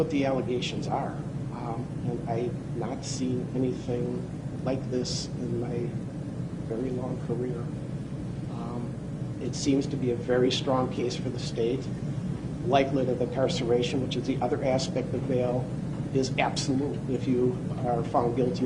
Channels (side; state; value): both; identical; correlation 1.00